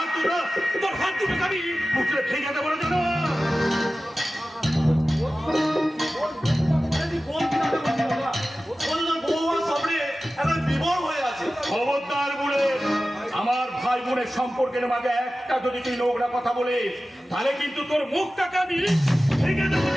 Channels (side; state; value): both; normal; correlation 0.95